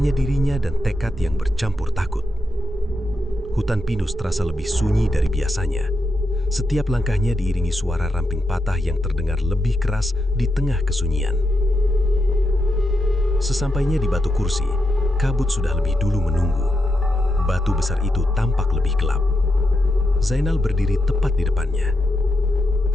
dirinya dan tekad yang bercampur takut. Hutan pinus terasa lebih sunyi dari biasanya. Setiap langkahnya diiringi suara ramping patah yang terdengar lebih keras di tengah kesunyian. Sesampainya di batu kursi, kabut sudah lebih dulu menunggu. Batu besar itu tampak lebih gelap. Zainal berdiri tepat di depannya.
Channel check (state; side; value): normal; both; correlation 0.85